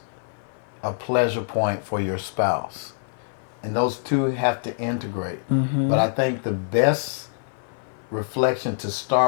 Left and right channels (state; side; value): silent; right; 57 dB below the other